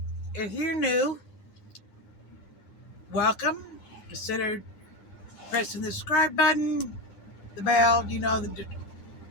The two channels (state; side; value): late; right; 9.6 ms